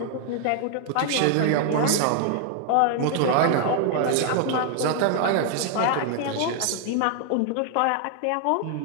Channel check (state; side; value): different; both; correlation 0.00